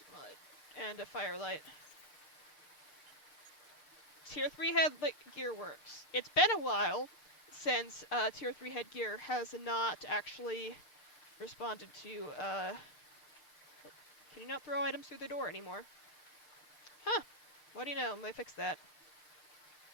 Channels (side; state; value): right; late; 6.6 ms